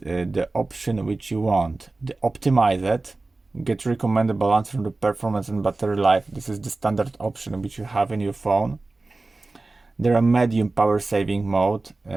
option which you want. The optimize it, get recommended balance from the performance and battery life. This is the standard option which you have in your phone. There are medium power saving mode,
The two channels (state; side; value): quieter; left; 3.3 dB